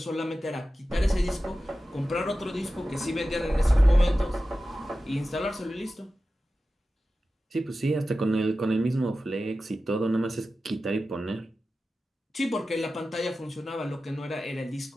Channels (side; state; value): both; normal; correlation 0.94